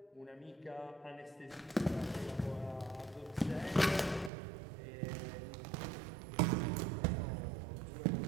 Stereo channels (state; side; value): drops out; left; at 4.3 s